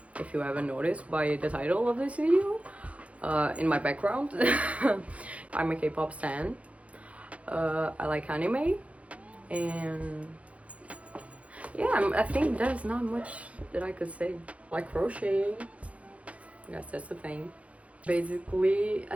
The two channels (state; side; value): late; left; 0.065 ms